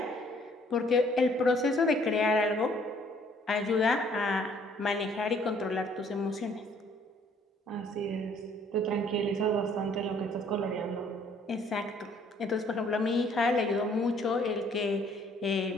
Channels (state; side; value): normal; both; correlation 0.61